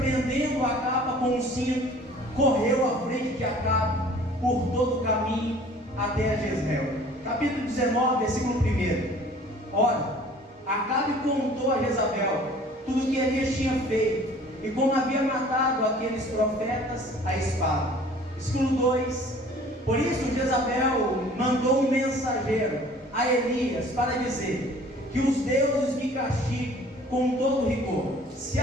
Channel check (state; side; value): normal; both; correlation 0.51